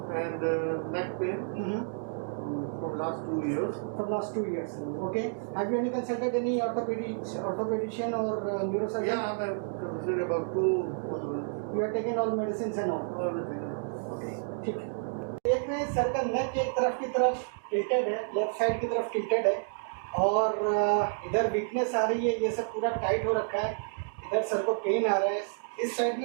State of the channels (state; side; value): silent; left; digital silence